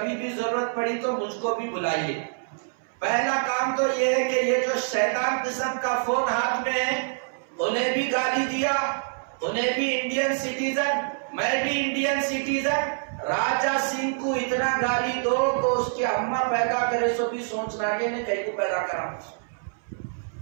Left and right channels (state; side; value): silent; left; 60 dB below the other